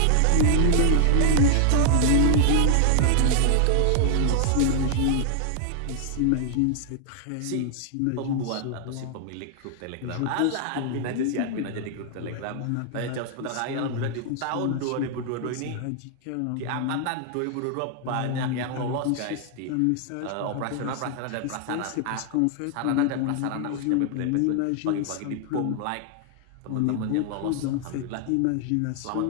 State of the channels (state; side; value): different; both; correlation 0.00